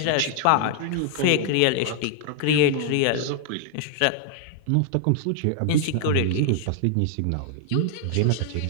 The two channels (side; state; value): both; different; correlation 0.00